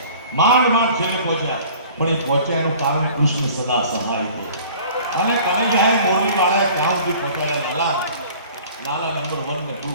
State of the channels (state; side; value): inverted; both; correlation -0.47